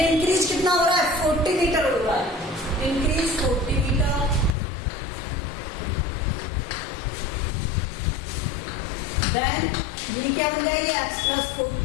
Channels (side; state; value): right; drops out; at 4.5 s